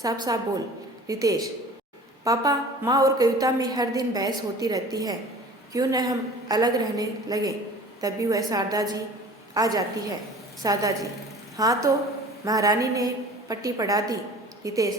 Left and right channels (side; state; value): both; normal; correlation 0.44